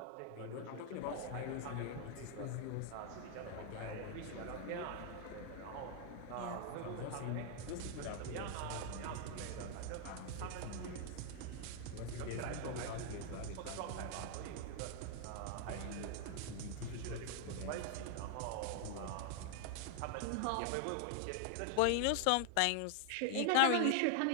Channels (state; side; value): different; both; correlation 0.00